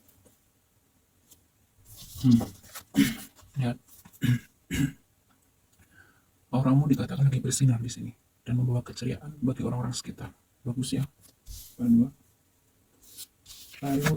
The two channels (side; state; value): both; identical; correlation 1.00